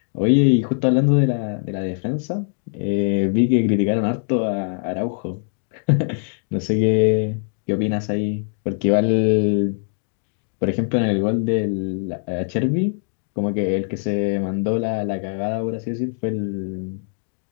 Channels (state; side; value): silent; right; digital silence